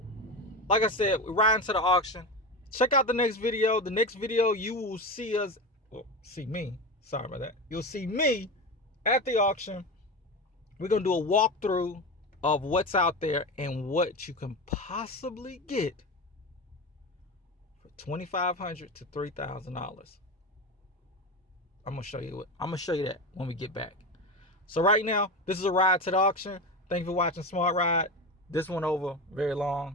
Like I said, we're riding to the auction. Check out the next video. The next video, you will see us, see me. Sorry about that. You'll see me at the auction. We're going to do a walkthrough of what's out there and what you can possibly get for $2,500 to $3,000. I'm gonna show you that when we get back. So right now, this is a ride to the auction. Thank you for watching Smartriide. This went over very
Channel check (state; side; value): normal; both; correlation 0.23